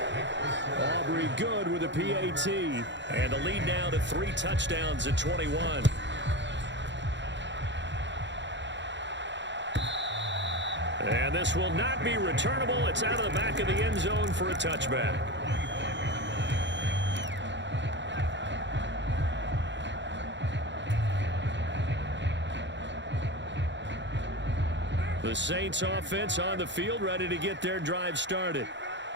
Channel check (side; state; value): left; late; 0.53 ms